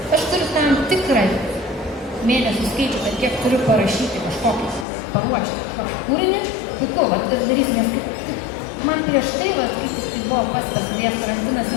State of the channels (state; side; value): drops out; right; at 4.9 s